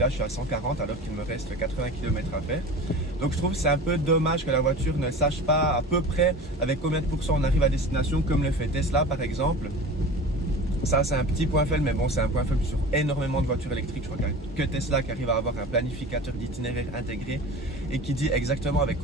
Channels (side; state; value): both; normal; correlation 0.36